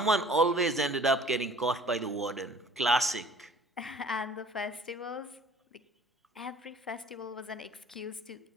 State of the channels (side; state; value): both; normal; correlation 0.51